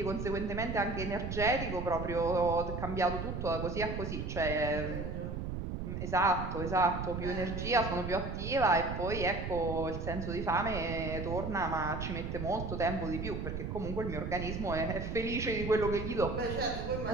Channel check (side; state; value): right; noise; rumble, 4 dB below the sound